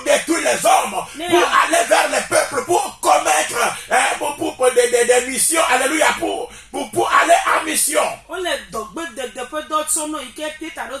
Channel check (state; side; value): identical; both; correlation 1.00